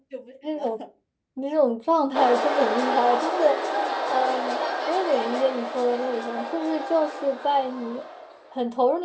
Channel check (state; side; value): identical; both; correlation 1.00